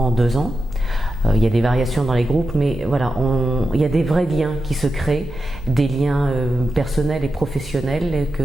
2 ans. Il y a des variations dans les groupes, mais voilà, il y a des vrais liens qui se créent, des liens personnels et professionnels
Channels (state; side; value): normal; both; correlation 0.89